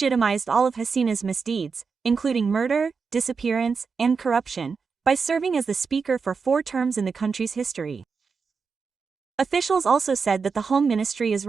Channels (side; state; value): left; quieter; 5.3 dB